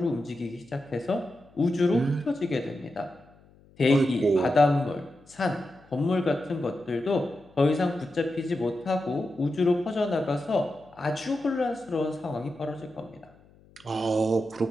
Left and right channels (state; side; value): noise; left; hum, 28 dB below the sound